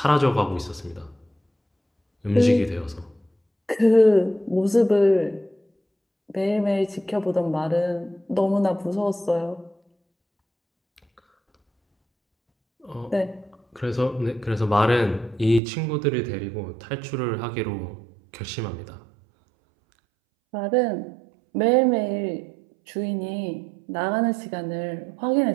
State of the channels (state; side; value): drops out; left; at 15.6 s